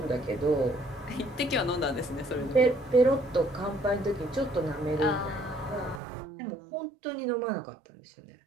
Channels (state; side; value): drops out; left; at 6.0 s